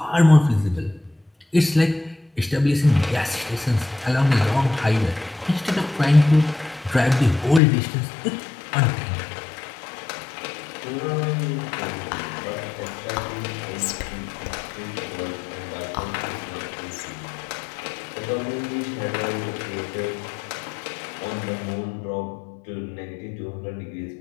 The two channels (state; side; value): drops out; right; at 7.6 s